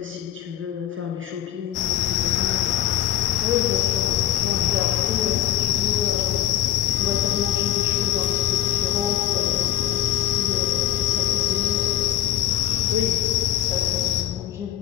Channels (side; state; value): right; quieter; 12.4 dB